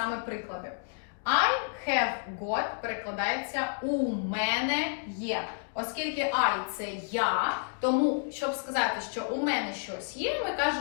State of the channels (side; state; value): right; silent; digital silence